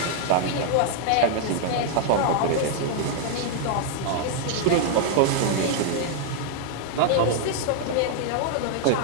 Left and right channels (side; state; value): both; different; correlation 0.00